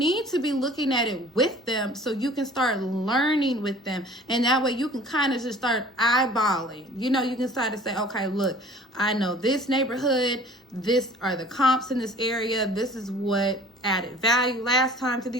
to be looking at it with them so you can start learning with them. And that way you can kind of just start eyeballing. You know, you can start to say, okay, look, I know this neighborhood, this are the comps in this area, this is what added value last time to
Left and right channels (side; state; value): both; normal; correlation 0.48